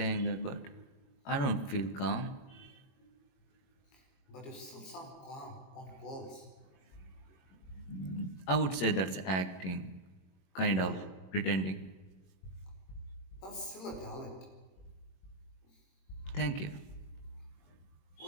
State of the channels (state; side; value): late; right; 22 ms